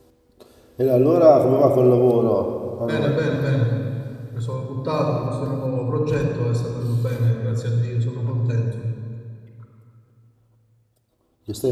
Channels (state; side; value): identical; both; correlation 1.00